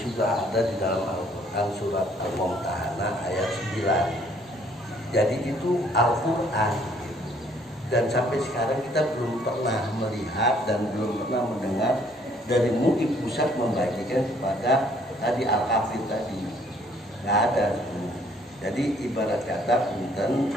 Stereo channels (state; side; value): normal; both; correlation 0.63